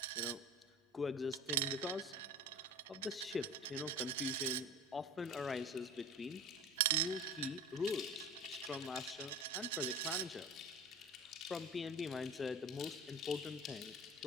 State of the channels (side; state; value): both; normal; correlation 0.35